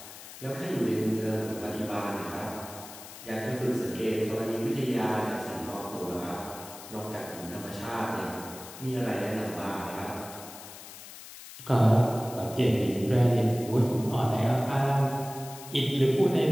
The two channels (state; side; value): noise; left; hiss, 15 dB below the sound